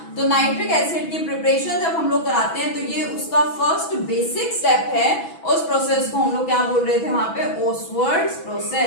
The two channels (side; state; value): right; late; 6.1 ms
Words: तो नाइट्रिक एसिड की प्रिपरेशन जब हम लोग कराते हैं तो ये उसका फर्स्ट बेसिक स्टेप है। उस प्रोसेस को हम लोग क्या बोल रहे थे वहां पे, ओसवर्ड्स